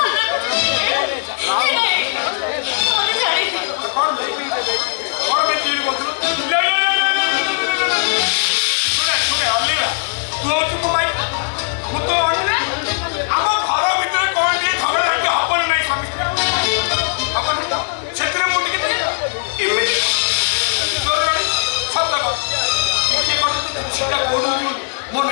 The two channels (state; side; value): silent; right; digital silence